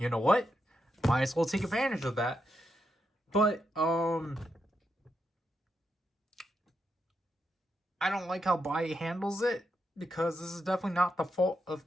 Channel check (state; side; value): normal; both; correlation 0.84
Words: know what? Might as well take advantage of that. But, I don't like how Buy handles it, because this is definitely not the fault of